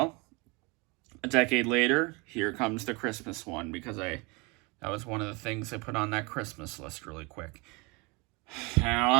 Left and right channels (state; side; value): quieter; left; 28.0 dB